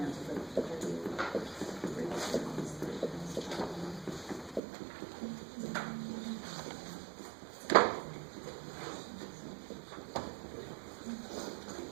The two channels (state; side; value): drops out; left; at 4.6 s